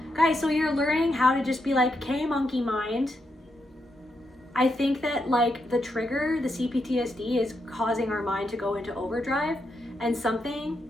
Guys, so you're learning how to just be like, okay, monkey mind. I think that like the trigger, the CPTSD, is causing our mind to go into overdrive, and something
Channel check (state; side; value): normal; both; correlation 0.82